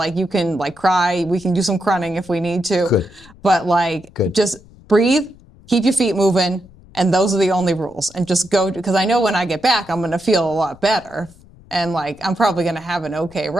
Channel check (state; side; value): noise; left; rumble, 24 dB below the sound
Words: you can like cry. We can do some crunning if we need to. Good. But like just breathe, keep your feet moving. And those are the only rules. And just go, because I know when I get back, I'm going to feel a lot better. And like, I'm probably going to have an okay